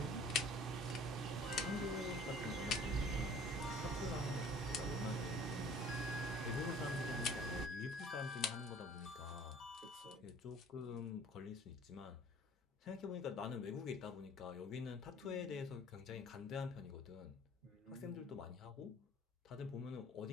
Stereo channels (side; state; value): both; normal; correlation 0.51